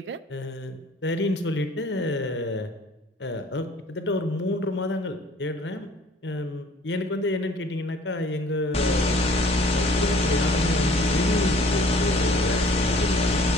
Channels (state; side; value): normal; both; correlation 0.53